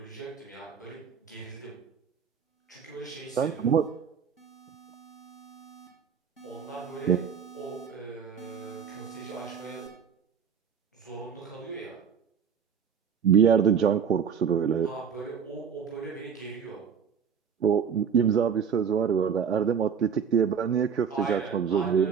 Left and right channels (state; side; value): quieter; left; 7.1 dB